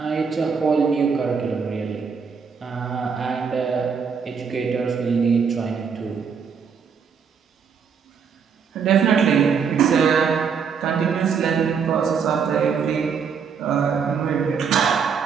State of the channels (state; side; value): quieter; left; 6.3 dB